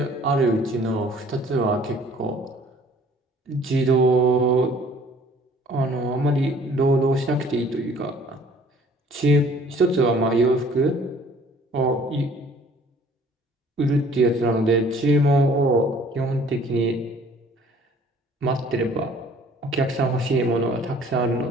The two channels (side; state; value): both; normal; correlation 0.54